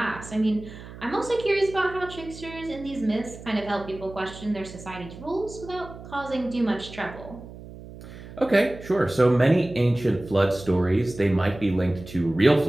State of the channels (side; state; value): right; noise; hum, 15 dB below the sound